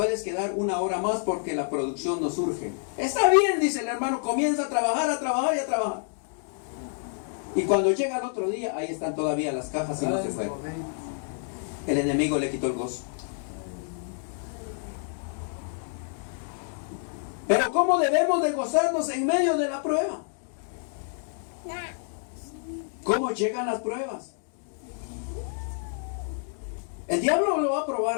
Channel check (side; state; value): right; silent; digital silence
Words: quedar 1 hora más porque la producción nos urge. Está bien, dice el hermano, comienza a trabajar y a trabajar. Y cuando llega el otro día, ahí están todavía las cajas y no se fueron. El enemigo le quitó el gozo. Pero ¿cómo debemos de gozarnos en medio de la prueba? ¿Cómo llegan las pruebas? El diablo lo va a